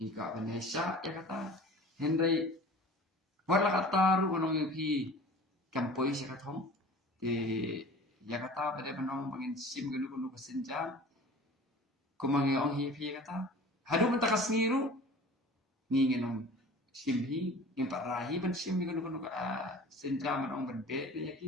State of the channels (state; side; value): normal; both; correlation 0.42